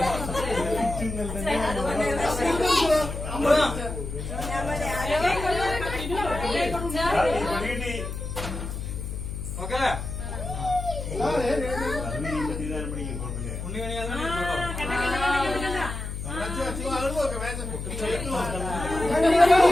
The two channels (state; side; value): noise; left; hum, 6 dB below the sound